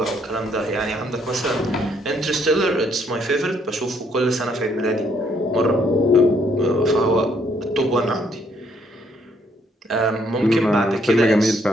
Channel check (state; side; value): normal; both; correlation 0.69